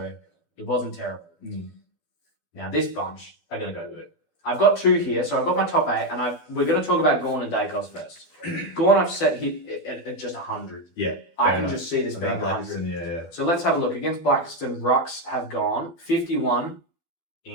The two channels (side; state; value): right; late; 12 ms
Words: it wasn't terrible. Now this bunch are going to go good. I've got 2 here, so I've got my top 8, and we're going to talk about Gawn and Dacos first. Gawn I've set hit at just 100. Yeah. I can just see this being 100. Yeah. So let's have a look. Against Blackiston, Rucks have gone 51